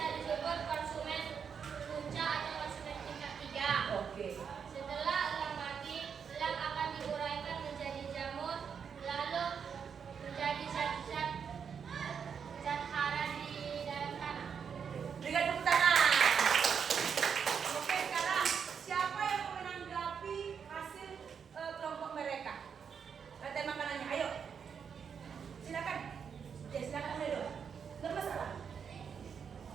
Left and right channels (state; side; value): quieter; left; 6.9 dB